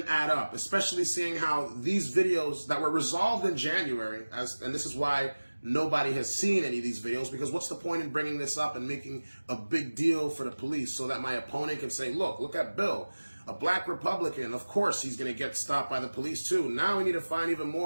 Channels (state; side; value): inverted; both; correlation -1.00